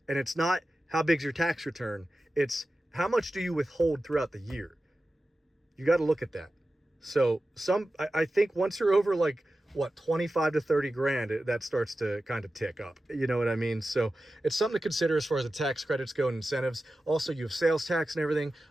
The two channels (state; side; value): normal; both; correlation 0.94